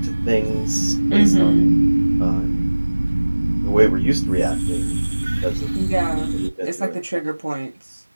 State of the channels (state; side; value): inverted; both; correlation -1.00